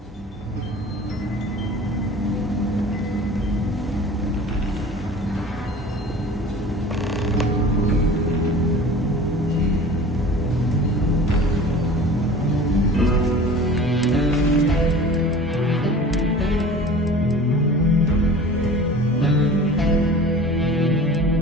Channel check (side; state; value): both; normal; correlation 0.41